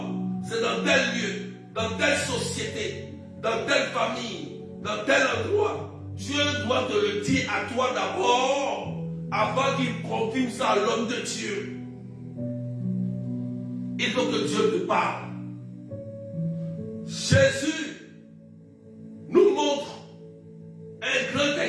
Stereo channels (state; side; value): identical; both; correlation 1.00